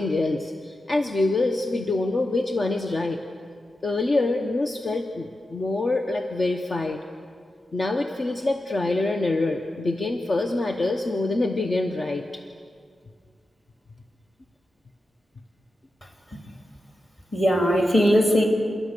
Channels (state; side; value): normal; both; correlation 0.90